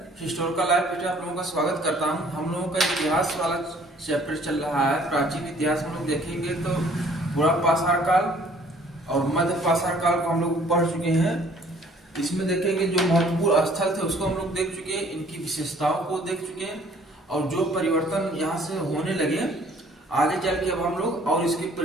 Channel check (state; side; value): normal; both; correlation 0.57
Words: हिस्टोरिकल लाइफ पे आप लोगों का स्वागत करता हूं। हम लोगों का इतिहास वाला चैप्टर चल रहा है। प्राचीन इतिहास हम लोग देखेंगे तो बुरा पाषाण काल और मध्य पाषाण काल को हम लोग पढ़ चुके हैं। इसमें देखेंगे जो महत्वपूर्ण स्थल थे उसको हम लोग देख चुके हैं, इनकी विशेषताओं को देख चुके हैं और जो परिवर्तन यहाँ से होने लगे आगे चल के अब हम लोग और इसके